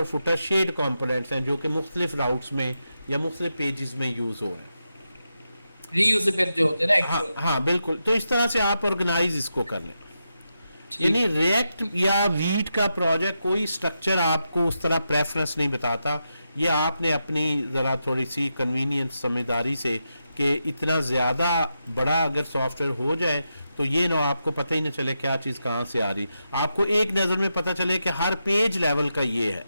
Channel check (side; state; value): both; inverted; correlation -0.87